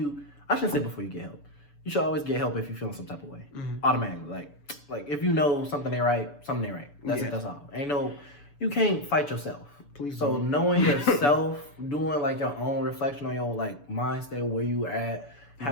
get help, you should always get help if you're feeling some type of way. Automatically, like if you know something ain't right, something ain't right. That's it. That's all. You can't fight yourself. Please so don't. Knowing yourself, doing like your own reflection on your like mind state, where you at,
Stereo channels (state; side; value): late; right; 6.9 ms